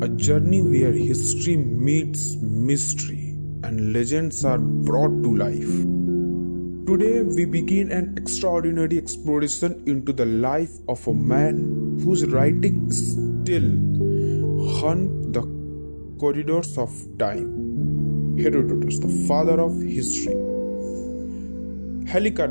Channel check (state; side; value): inverted; both; correlation -1.00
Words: a journey where history meets mystery and legends are brought to life. Today, we begin an extraordinary exploration into the life of a man whose writing still haunt the corridors of time. Herodotus, the father of history.